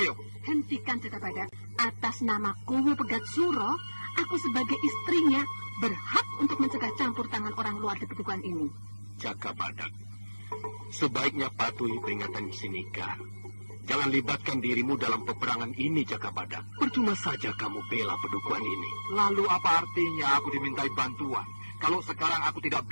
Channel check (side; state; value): both; inverted; correlation -1.00